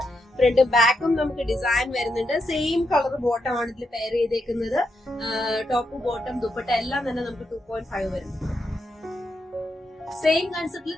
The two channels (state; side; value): normal; both; correlation 0.82